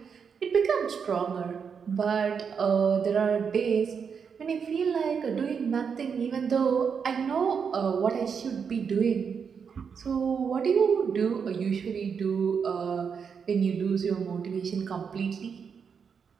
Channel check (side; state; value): left; quieter; 6.5 dB